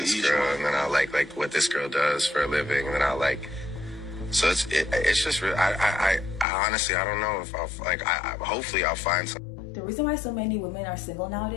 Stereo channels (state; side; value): drops out; right; at 6.5 s